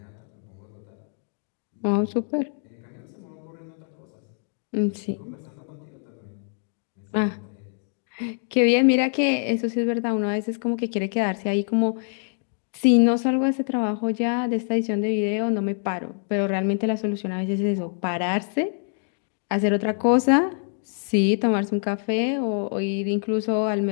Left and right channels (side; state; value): right; silent; 62 dB below the other